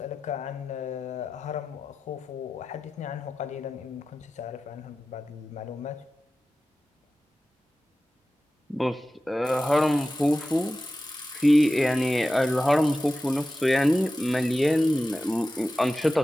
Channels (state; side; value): normal; both; correlation 0.94